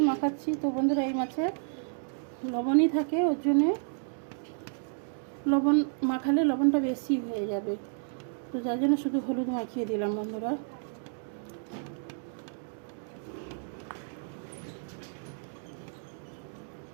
মাখাচ্ছি। তো বন্ধুরা, এই মাছে লবণই থাকে, ওর জন্যে লবণ মাখালে লবণটা বেশি হয়ে যাবে। তো যার জন্য শুধু হলুদ মাখিয়ে দিলাম বন্ধুরা।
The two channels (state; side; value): silent; left; digital silence